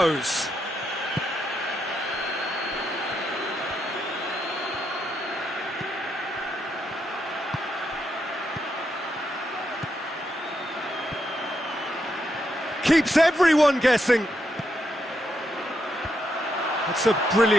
Keeps everyone guessing. It's a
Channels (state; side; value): normal; both; correlation 0.81